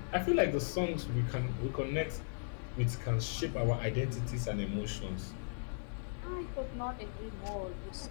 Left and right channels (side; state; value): right; silent; digital silence